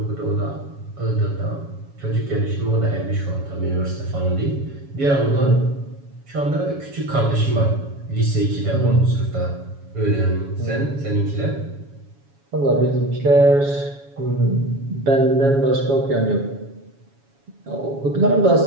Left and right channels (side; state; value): left; late; 7.2 ms